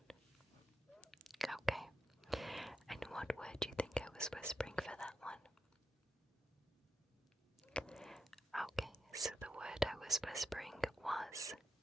Okay. And what word do you think I was whispering for that one? Okay, so the word I was whispering was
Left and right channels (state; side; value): normal; both; correlation 0.87